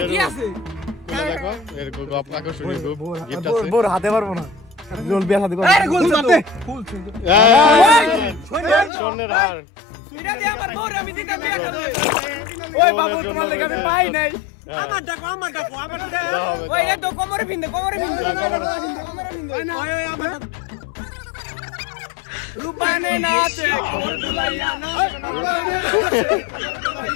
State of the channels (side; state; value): right; drops out; at 8.9 s